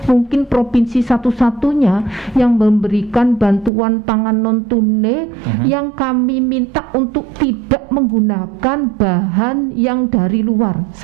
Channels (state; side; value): drops out; left; at 3.7 s